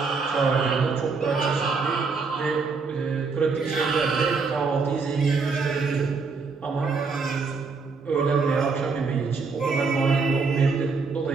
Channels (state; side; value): quieter; left; 4.6 dB